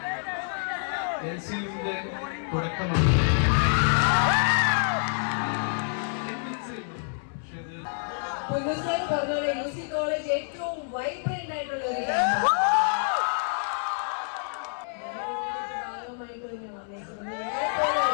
എൽസിയുടെ തുടക്കമാണ്. പുതുസായി പറഞ്ഞ യൂസി കോളേജ് ഏറ്റവും വൈബ്രന്റ് ആയിട്ടുള്ള ഒരു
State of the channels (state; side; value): silent; right; 60 dB below the other